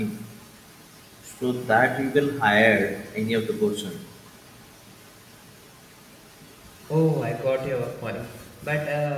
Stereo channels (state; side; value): identical; both; correlation 1.00